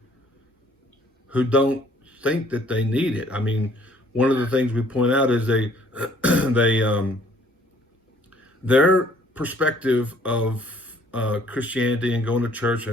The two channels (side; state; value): both; normal; correlation 0.59